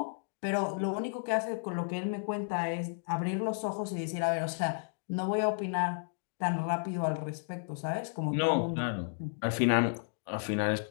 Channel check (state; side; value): silent; right; digital silence